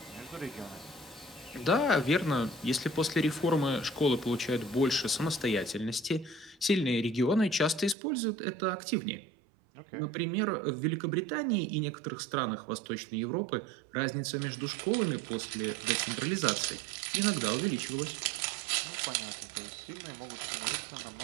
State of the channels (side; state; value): left; drops out; at 8.0 s